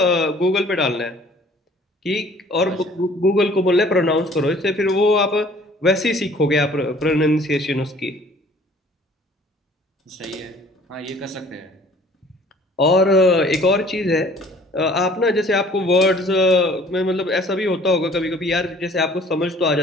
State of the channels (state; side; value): normal; both; correlation 0.53